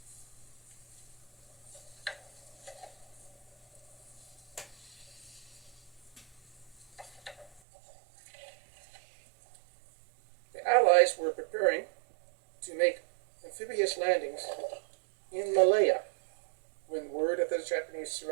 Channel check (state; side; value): drops out; left; at 7.6 s